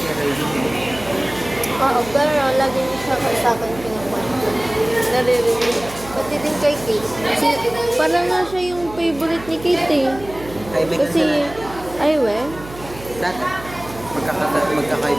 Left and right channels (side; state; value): right; noise; hum, 16 dB below the sound